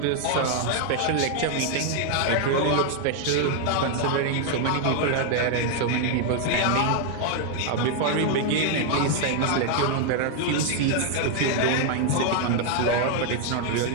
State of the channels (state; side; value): different; both; correlation 0.00